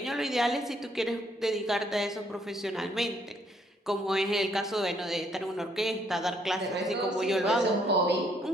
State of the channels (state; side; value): normal; both; correlation 0.69